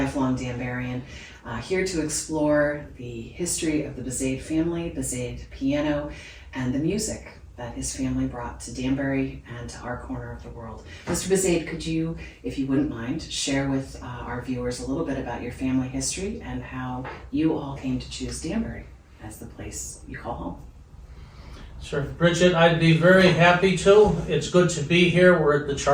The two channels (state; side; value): identical; both; correlation 1.00